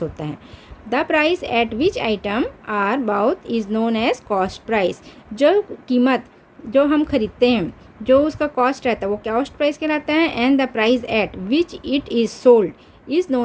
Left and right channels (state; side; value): identical; both; correlation 1.00